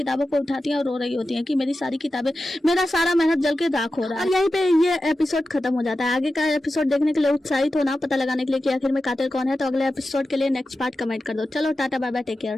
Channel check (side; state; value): both; normal; correlation 0.92